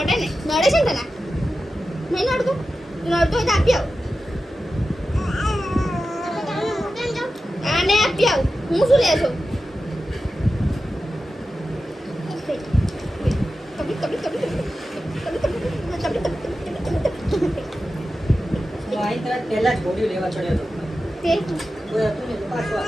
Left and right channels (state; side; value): normal; both; correlation 0.93